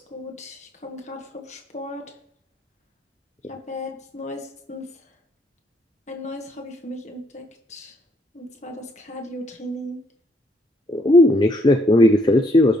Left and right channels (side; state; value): both; normal; correlation 0.69